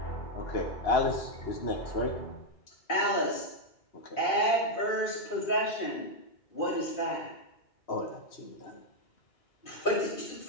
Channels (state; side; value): late; right; 2.5 ms